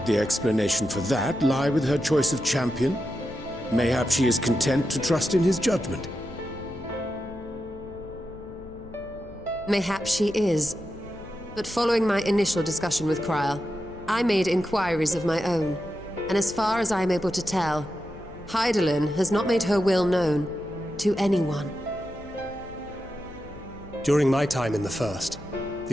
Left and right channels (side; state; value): left; noise; hum, 21 dB below the sound